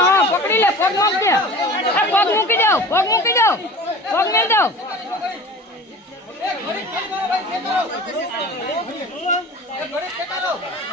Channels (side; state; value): both; normal; correlation 0.38